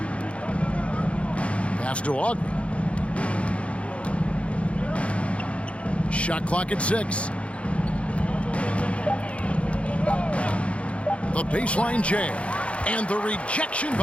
Pass to Ogden. Shot clock at 6. The baseline jam. And the rejection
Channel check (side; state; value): right; late; 0.062 ms